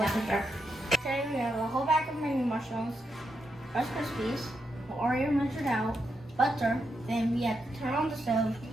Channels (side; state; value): both; normal; correlation 0.83